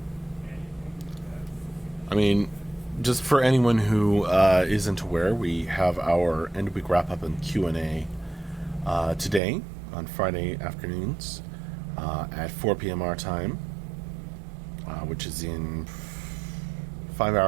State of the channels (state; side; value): drops out; left; at 9.4 s